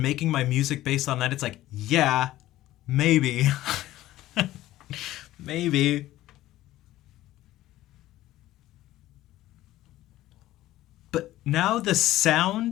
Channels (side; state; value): right; quieter; 15.2 dB